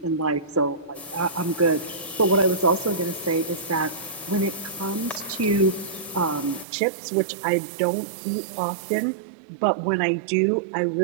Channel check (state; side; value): drops out; left; at 6.7 s